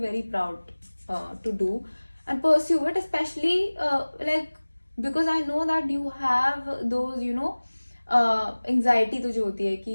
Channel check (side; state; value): both; inverted; correlation -1.00